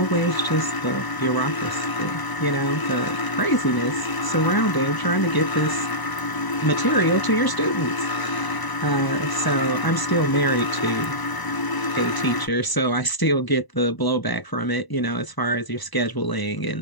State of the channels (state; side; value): late; right; 1.0 ms